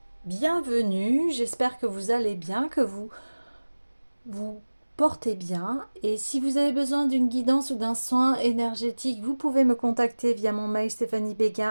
bienvenue, j'espère que vous allez bien, que vous portez bien. Et si vous avez besoin d'une guidance ou d'un soin énergétique, vous pouvez me contacter via mon mail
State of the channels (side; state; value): both; inverted; correlation -1.00